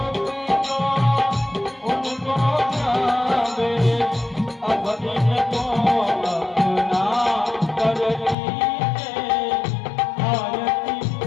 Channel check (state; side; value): drops out; right; at 8.3 s